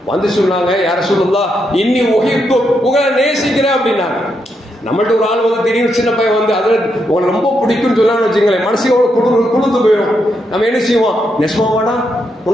வந்து சொன்னாங்க, யா ரசூலுல்லாஹ் இன்னி உஹிப்பு, உங்களை நேசிக்கிறேன் அப்படின்னாங்க. நம்மள்ட்ட ஒரு ஆள் வந்து திடீர்னு சின்ன பையன் வந்து அதில் உங்களை ரொம்ப பிடிக்கும்னு சொல்லான்னு வச்சுங்களேன், மனசையோட குளிர்ந்து போயிடும். நம்ம என்ன செய்வோம், நெசமாவாடா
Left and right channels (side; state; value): both; normal; correlation 0.81